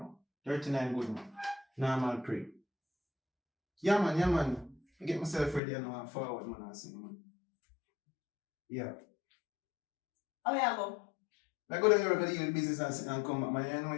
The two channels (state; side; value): drops out; right; at 5.6 s